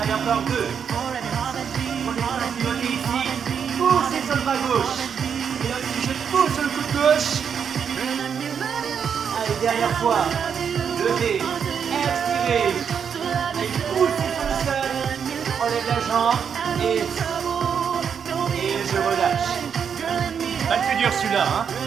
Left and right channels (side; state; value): left; quieter; 7.3 dB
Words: encore 2. Je pivote ici. Poussez sur le bras gauche. Et là aussi, je pousse sur le coude gauche. Allez, dernière fois. Levez. Expirez. Et poussez sur le sol. Relève la jambe. Et je relâche. Pas le plus dur celui-là, hein.